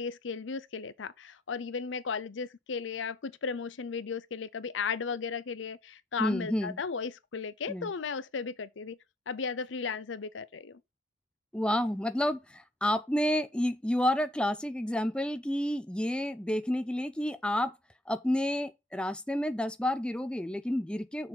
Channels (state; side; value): normal; both; correlation 0.67